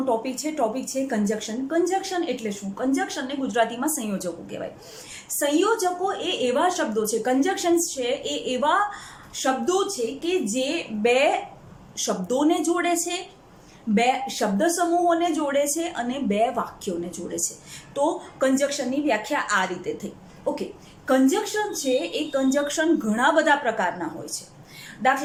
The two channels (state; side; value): identical; both; correlation 1.00